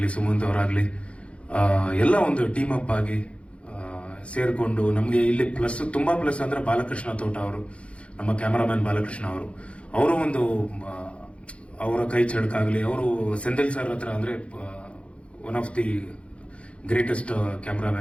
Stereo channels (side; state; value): right; late; 0.061 ms